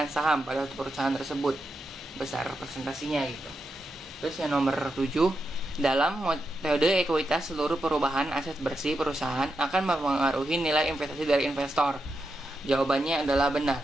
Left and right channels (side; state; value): both; normal; correlation 0.86